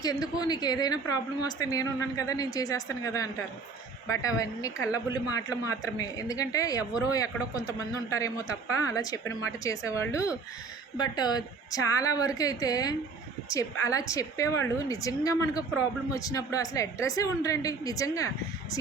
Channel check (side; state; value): left; quieter; 4.4 dB